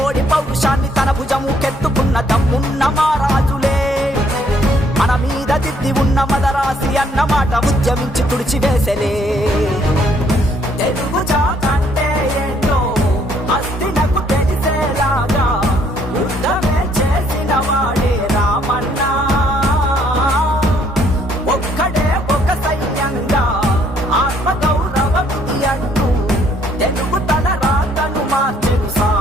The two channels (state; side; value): normal; both; correlation 0.66